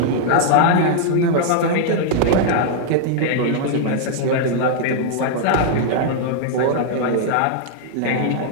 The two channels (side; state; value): both; different; correlation -0.01